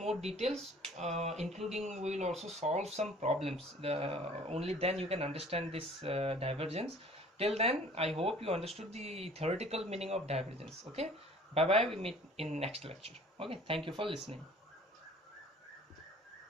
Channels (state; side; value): normal; both; correlation 0.50